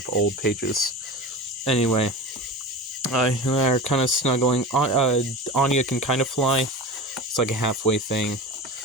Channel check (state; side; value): normal; both; correlation 0.30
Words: old pages. Anyway, they're kind of snuggling. Anya can kind of fly. It's like a halfway thing.